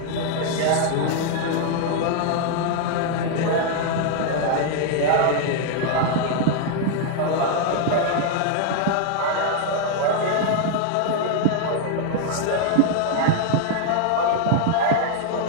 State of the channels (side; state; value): both; different; correlation 0.00